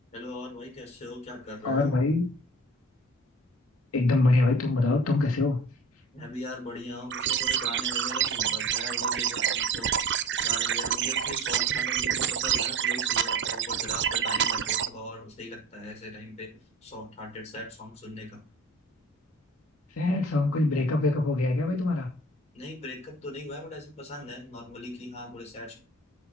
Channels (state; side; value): normal; both; correlation 0.39